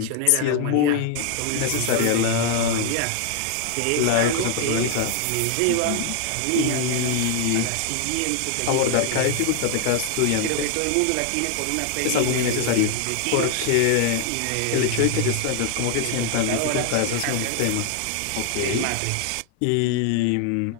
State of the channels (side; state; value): both; different; correlation 0.00